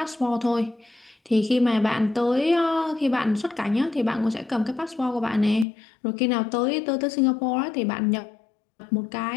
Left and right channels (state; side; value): drops out; right; at 5.7 s